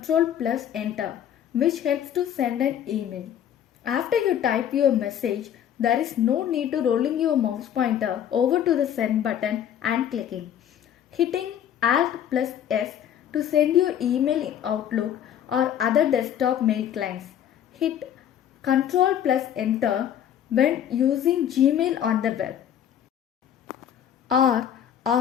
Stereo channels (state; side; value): quieter; right; 9.9 dB